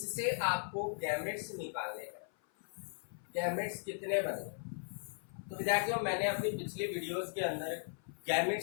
आपको गैमेट्स निकालने हैं। गैमेट्स कितने बने? तो विद्यार्थियों, मैंने अपनी पिछली वीडियोस के अंदर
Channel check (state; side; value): silent; right; 53 dB below the other